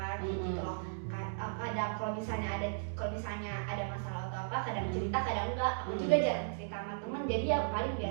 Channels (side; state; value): left; silent; digital silence